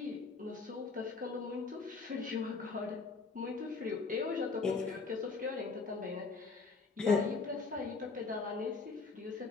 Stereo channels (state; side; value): quieter; right; 4.3 dB